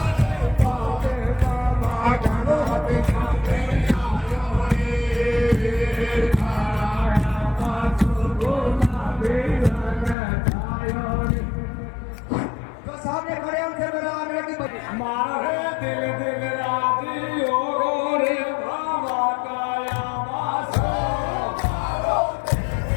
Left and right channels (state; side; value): drops out; right; at 10.2 s